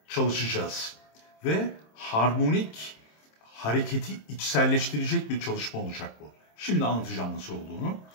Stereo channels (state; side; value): late; right; 26 ms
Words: çalışacağız. Ve harmonik hareketi içselleştirecek bir çalışma olacak bu. Şimdi anlatacağım nasıl olduğunu.